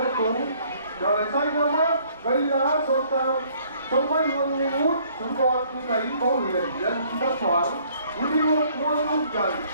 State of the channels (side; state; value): both; inverted; correlation -0.61